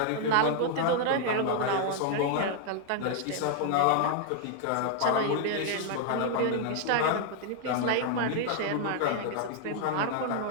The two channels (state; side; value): different; both; correlation 0.00